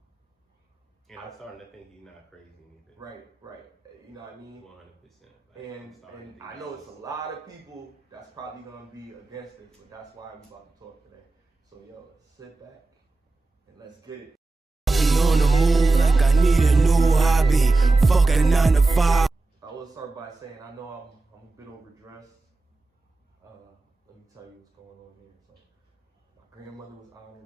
And I'm starting to think he's not crazy either. Right. You know what I mean? 100%. And I know it's a lot of people that's probably going to be against it, but that's why I'm about to talk today. So, yo, sit back and let's get it. On the move like I need a new hobby. Fuck a 9 to 5. I will start by saying I know I'm a bit overdressed. Let me tell you what's going on here. So, my grandmother was honored.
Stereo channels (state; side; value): quieter; left; 3.4 dB